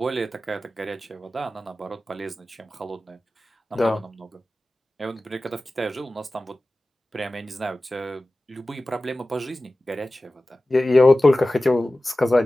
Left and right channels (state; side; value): normal; both; correlation 0.96